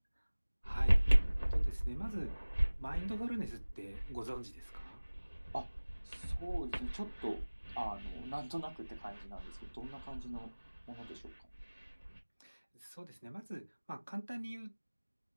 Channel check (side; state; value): both; inverted; correlation -1.00